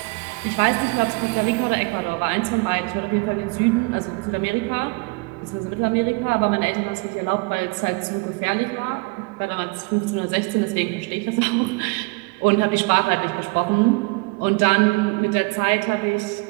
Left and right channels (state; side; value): quieter; left; 28.9 dB